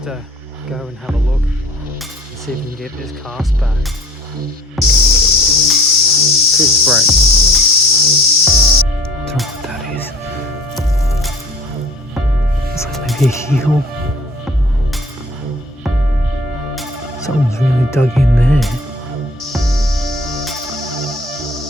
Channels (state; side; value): normal; both; correlation 0.49